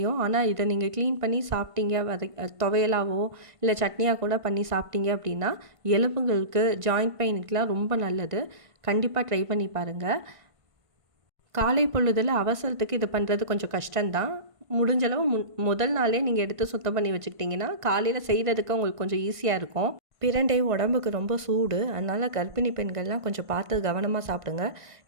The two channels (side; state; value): left; late; 1.5 ms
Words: ஆனால் இதை நீங்கள் க்ளீன் பண்ணி சாப்பிட்டீங்க துவையலாவோ இல்லை சட்னியாக கூட பண்ணி சாப்பிட்டீங்க அப்படின்னா எலும்புகளுக்கு ஜாயிண்ட் பெயினுக்கெலாம் ரொம்ப நல்லது. கண்டிப்பாக ட்ரை பண்ணி பாருங்கள். காலை பொழுதில் அவசரத்துக்கு இது பண்ணுறது கொஞ்சம் கஷ்டம்தான். முடிஞ்சளவு முதல் நாளே நீங்கள் எடுத்து சுத்தம் பண்ணி வச்சுக்கிட்டிங்கன்னா காலையில் செய்கிறதுக்கு உங்களுக்கு கொஞ்சம் ஈஸியாக இருக்கும். பிரண்டை உடம்புக்கு ரொம்ப சூடு, அதனால் கர்ப்பிணி பெண்கள்லாம் கொஞ்சம் பார்த்து கவனமாக சாப்பிடுங்க.